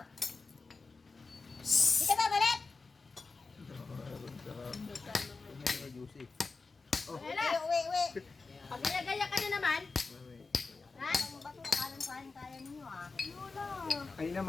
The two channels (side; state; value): right; quieter; 4.1 dB